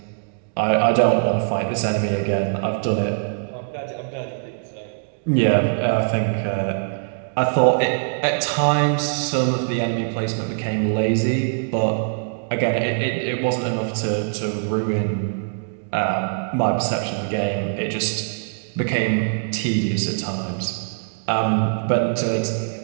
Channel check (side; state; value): left; silent; digital silence